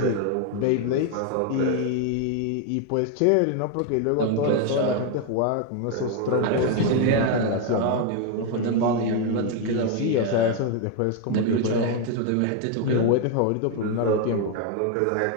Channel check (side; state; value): both; different; correlation 0.01